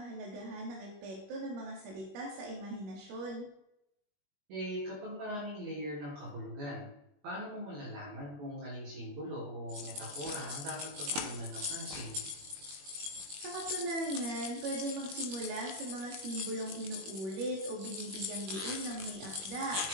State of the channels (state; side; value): late; left; 21 ms